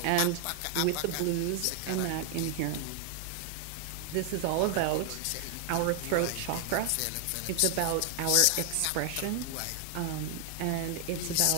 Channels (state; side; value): different; both; correlation 0.00